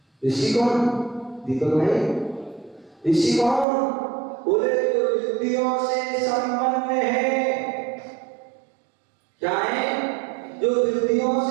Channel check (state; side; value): drops out; left; at 3.7 s